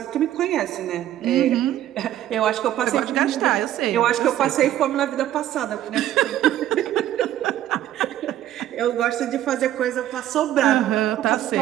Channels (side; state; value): left; quieter; 12.6 dB